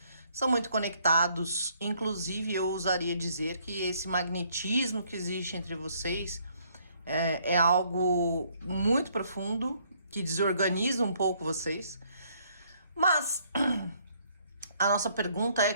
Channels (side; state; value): both; inverted; correlation -0.66